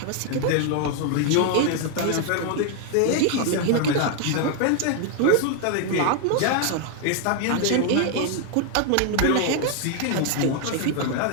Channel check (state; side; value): different; both; correlation 0.00